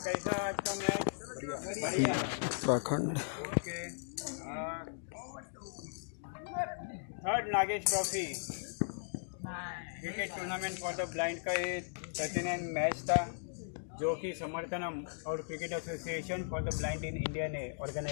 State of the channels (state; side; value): silent; right; digital silence